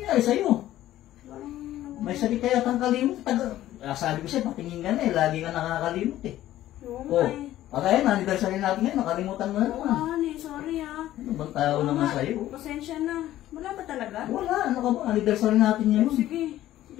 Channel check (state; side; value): quieter; right; 13.9 dB